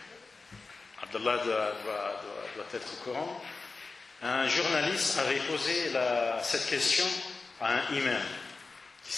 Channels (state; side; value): quieter; right; 4.0 dB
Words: Abdallah doit être au courant, un journaliste avait posé cette question à un imam qui